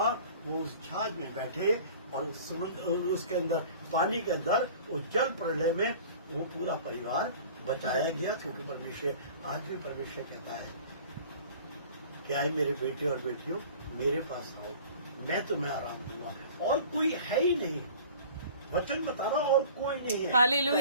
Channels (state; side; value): inverted; both; correlation -0.44